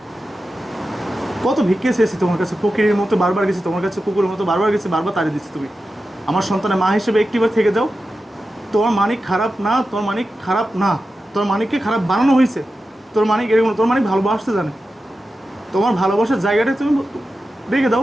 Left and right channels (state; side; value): normal; both; correlation 0.92